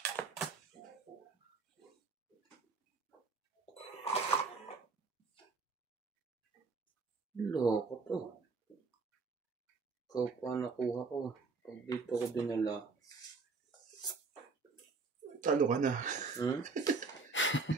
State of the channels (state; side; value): quieter; left; 4.3 dB